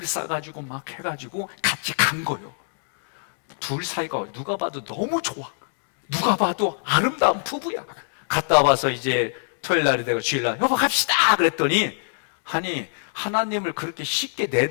싸가지고 막 해가지고 같이 간 거예요. 둘 사이가 누가 봐도 너무 좋아. 누가 봐도 아름다운 부부야. 갔다 와서 이제 토요일 날이 되고 주일날 여보 갑시다 그랬더니 아니 하나님을 그렇게 쉽게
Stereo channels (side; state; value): right; silent; digital silence